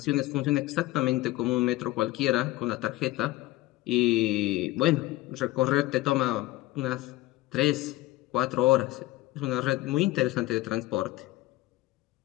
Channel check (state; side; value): quieter; right; 18.1 dB